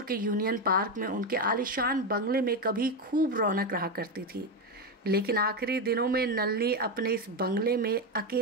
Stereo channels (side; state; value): both; normal; correlation 0.11